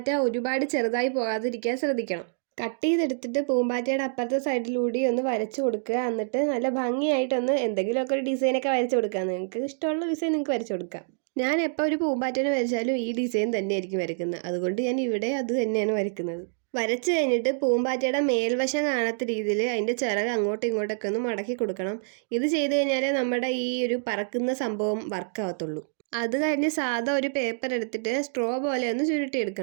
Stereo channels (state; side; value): silent; left; digital silence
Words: ഒരുപാട് ചെറുതായി പോകാതിരിക്കാൻ ശ്രദ്ധിക്കണം. കട്ട് ചെയ്തെടുത്തിട്ട് പൂമ്പാറ്റയുടെ അപ്പുറത്തെ സൈഡിലൂടെ ഒന്ന് വരച്ചു കൊടുക്കുക. എന്നിട്ട് നല്ല ഭംഗിയായിട്ടൊന്ന് എന്തെങ്കിലുമൊക്കെ ഒരു ഡിസൈനൊക്കെ വരച്ചു കൊടുക്കുക. നിങ്ങൾക്ക് ഇഷ്ടമുള്ള ഡിസൈൻ നിങ്ങൾക്ക് വരച്ചു കൊടുക്കാം. ഞാൻ എപ്പോൾ ഒരു പൂമ്പാറ്റേനെ വരച്ചാലും ഈ ഡിസൈൻ തന്നെയായിരിക്കും വരയ്ക്കുന്നത്. അതുകൊണ്ട് ഞാൻ ഇവിടെ അത് തന്നെയാണ് വരയ്ക്കുന്നത്. വരച്ചു കഴിഞ്ഞിട്ട് പൂമ്പാറ്റയുടെ മേൽവശം കാണാത്ത രീതിയിൽ അതിൻ്റെ ചിറക് അങ്ങോട്ടും ഇങ്ങോട്ടൊക്കെ ഒന്ന് മടക്കി കൊടുക്കണം. ഇത് ചെയ്ത് കഴിഞ്ഞാലേ നമ്മുടെ ഈ ഒരു പറക്കുന്ന സംഭവം വർക്കാവത്തുള്ളൂ. അത് കഴിഞ്ഞ് സാധാ ഒരു പേപ്പർ എടുത്തിട്ട് സ്ട്രോ പോലെ ഒന്ന്